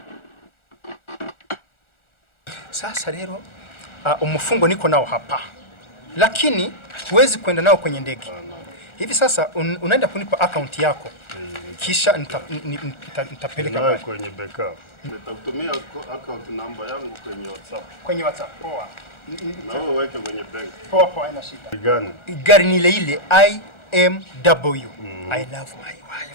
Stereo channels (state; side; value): late; right; 1.4 ms